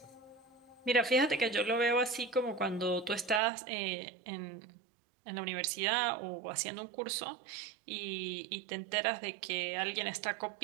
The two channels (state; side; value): drops out; left; at 3.4 s